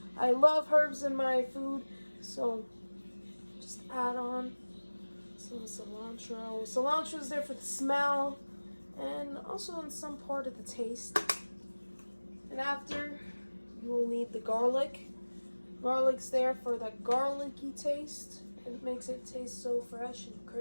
I love herbs in my food, so just add on some cilantro. Cilantro is there for the smell and also in some part of the taste. And after, you will need the garlic. Garlic's there for that garlicky taste. It makes it taste so fresh and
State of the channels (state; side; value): inverted; both; correlation -1.00